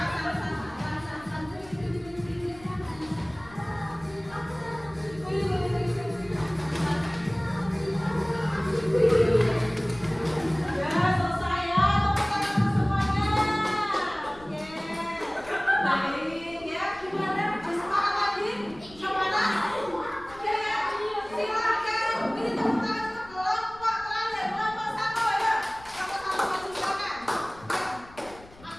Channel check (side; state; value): left; noise; rumble, 22 dB below the sound